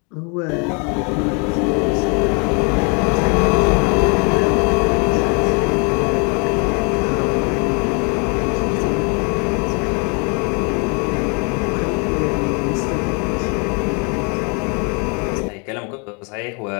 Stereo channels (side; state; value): right; quieter; 34.3 dB